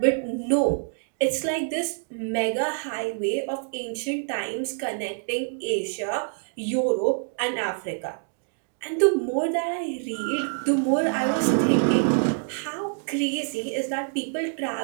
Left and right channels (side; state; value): left; silent; 60 dB below the other